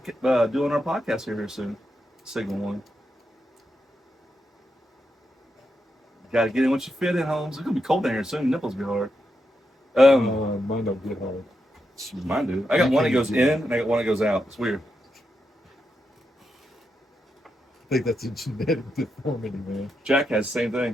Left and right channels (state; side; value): normal; both; correlation 0.85